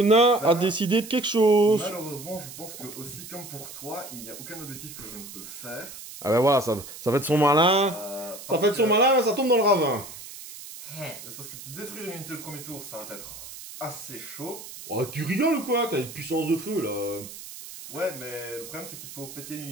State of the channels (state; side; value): noise; right; hiss, 13 dB below the sound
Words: nain a décidé de quelque chose. Malheureusement, je pense que aussi, comme pour toi, il n'y a aucun objectif que je ne peux faire. Ah ben voilà, ça fait de son malin. Ça fait de son malin, mais ça tombe dans le ravin. C'est parce que détruire une unité le premier tour, ça va être assez chaud. Oh, tu rigoles ou quoi? T'as une puissance de feu, là. Ouais, mais le problème, c'est qu'il faut péter une